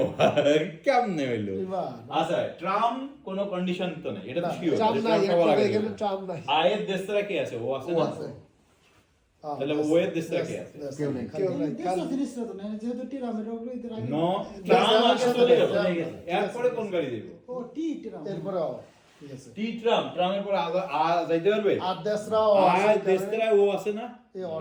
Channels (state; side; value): identical; both; correlation 1.00